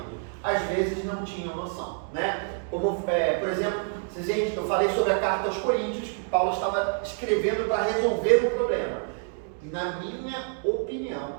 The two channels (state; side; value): silent; left; 60 dB below the other